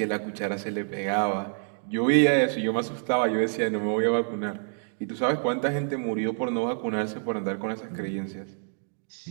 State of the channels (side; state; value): left; silent; digital silence